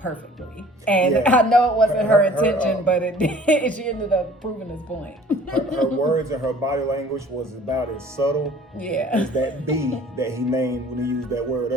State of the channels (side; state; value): both; normal; correlation 0.51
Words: And I know it wasn't her intention, but it did. She ended up proving his point. Her words and her body language was about as subtle as that B that he named when he used that word